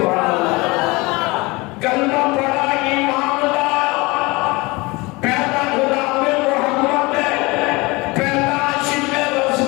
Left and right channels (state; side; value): quieter; right; 24.1 dB